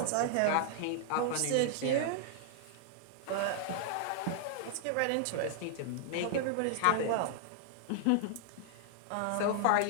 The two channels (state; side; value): different; both; correlation -0.01